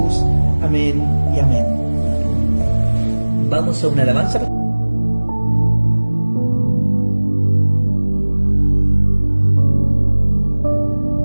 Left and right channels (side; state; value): both; inverted; correlation -1.00